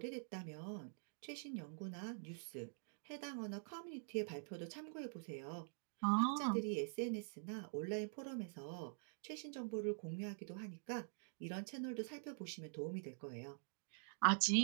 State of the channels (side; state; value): left; silent; digital silence